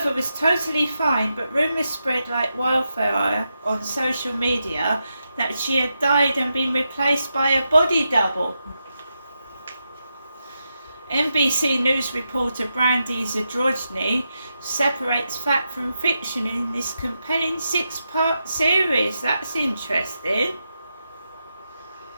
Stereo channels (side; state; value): both; inverted; correlation -0.86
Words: was totally fine, but rumours spread like wildfire on social media that she had died and been replaced by a body double. NBC News reporter Brandy Zadrozny separates fact from fiction in this compelling 6-part series. That's interesting.